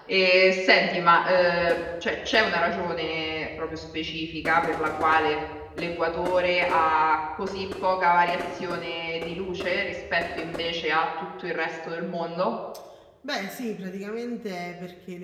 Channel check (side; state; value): both; identical; correlation 1.00